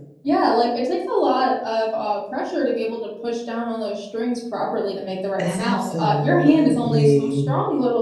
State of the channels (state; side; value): identical; both; correlation 1.00